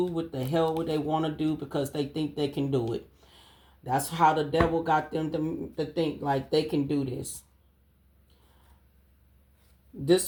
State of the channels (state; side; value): identical; both; correlation 1.00